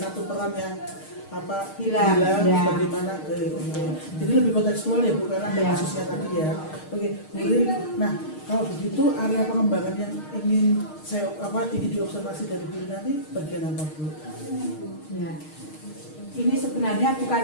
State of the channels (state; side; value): late; right; 6.5 ms